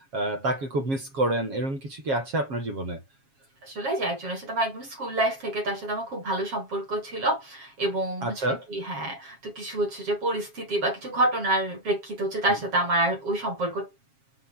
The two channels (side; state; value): left; late; 7.4 ms